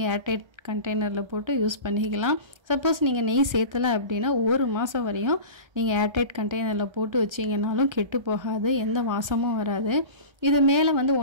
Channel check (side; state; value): left; late; 1.3 ms